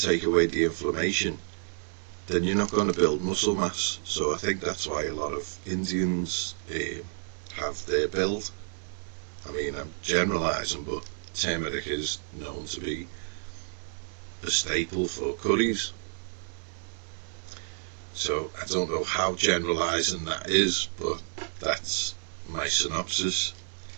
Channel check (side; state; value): left; silent; digital silence